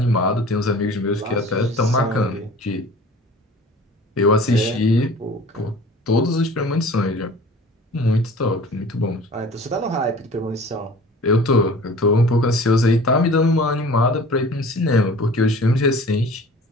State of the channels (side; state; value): both; normal; correlation 0.44